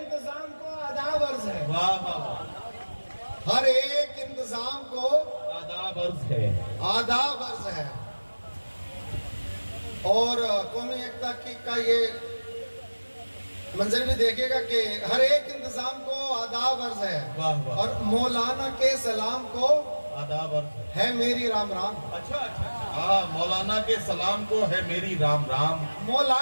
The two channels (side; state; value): both; inverted; correlation -1.00